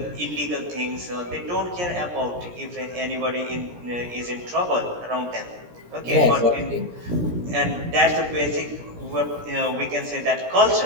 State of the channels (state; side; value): late; left; 17 ms